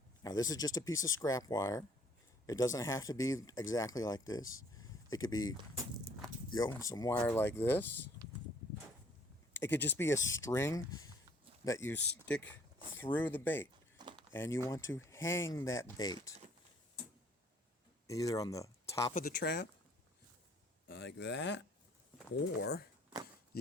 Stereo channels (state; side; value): normal; both; correlation 0.60